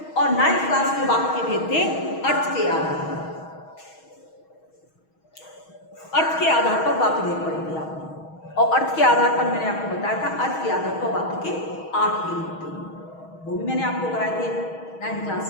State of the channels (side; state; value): right; late; 6.3 ms